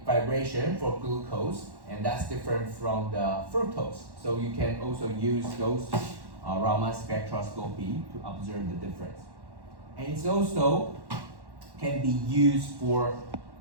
for glucose, and that's different from the fructose. So you can also use those Raman spectroscopy to observe the difference. And it's also can be used for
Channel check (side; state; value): left; late; 1.1 ms